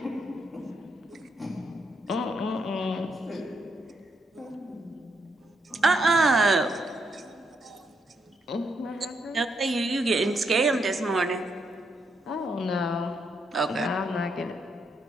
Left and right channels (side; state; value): both; normal; correlation 0.78